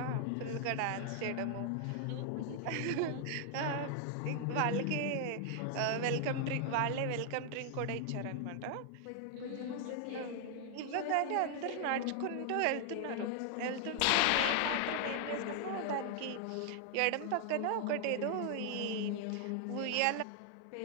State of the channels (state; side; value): different; both; correlation 0.00